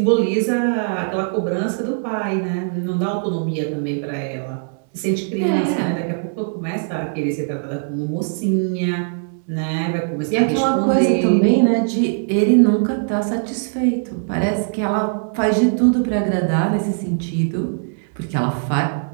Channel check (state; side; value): silent; left; 65 dB below the other